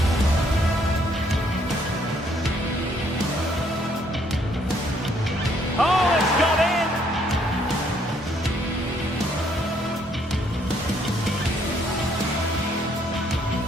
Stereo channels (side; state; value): both; normal; correlation 0.68